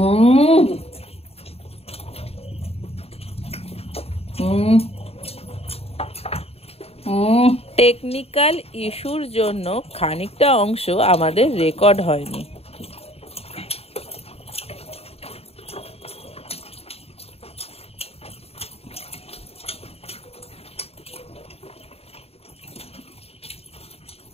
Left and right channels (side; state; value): right; late; 0.29 ms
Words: টেকনিক্যাল ইস্যুর জন্য খানিকটা অংশ আমাদের রেকর্ড হয়নি।